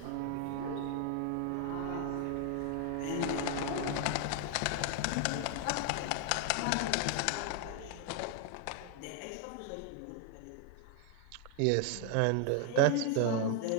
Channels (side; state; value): both; different; correlation 0.00